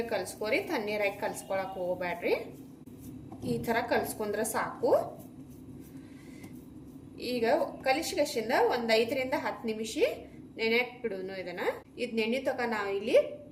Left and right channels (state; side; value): identical; both; correlation 1.00